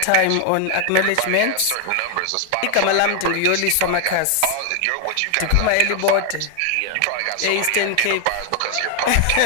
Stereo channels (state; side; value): different; both; correlation 0.00